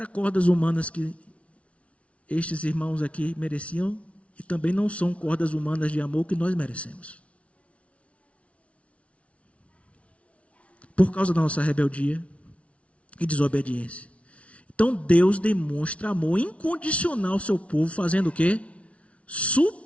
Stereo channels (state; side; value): late; right; 0.063 ms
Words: cordas humanas que estes irmãos aqui mereciam, e também não são cordas humanas de amor que nós merecemos. Por causa da nossa rebeldia e desobediência. Então Deus demonstra amor incondicional ao seu povo, fazendo o quê?